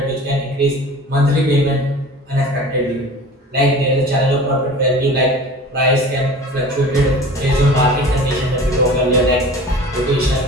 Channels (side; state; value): both; normal; correlation 0.40